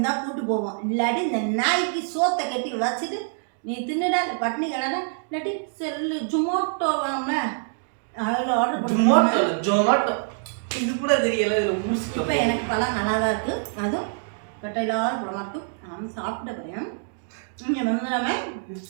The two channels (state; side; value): silent; left; digital silence